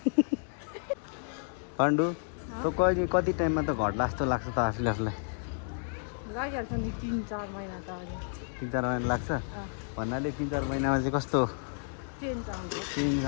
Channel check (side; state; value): right; silent; 57 dB below the other